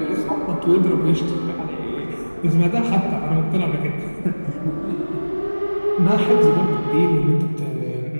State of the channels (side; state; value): both; inverted; correlation -1.00